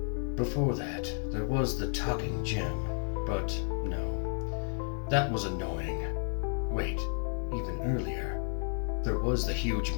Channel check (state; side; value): silent; right; 56 dB below the other